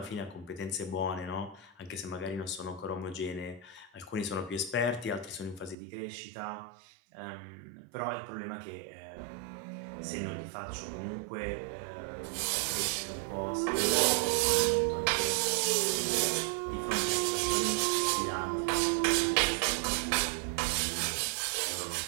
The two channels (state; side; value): drops out; left; at 5.8 s